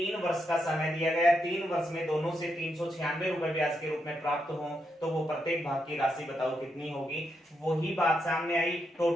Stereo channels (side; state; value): both; normal; correlation 0.82